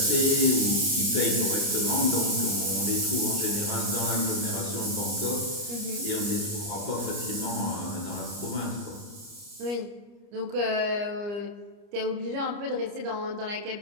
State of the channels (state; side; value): late; left; 29 ms